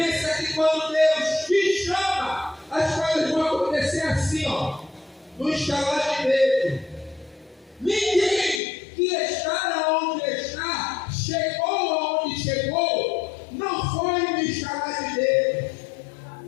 que quando Deus te chama, as coisas vão acontecer assim, ó, no estalar de dedo. Ninguém que está onde está, chegou aonde chegou, não foi no estalar de dedo.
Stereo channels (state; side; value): drops out; right; at 8.6 s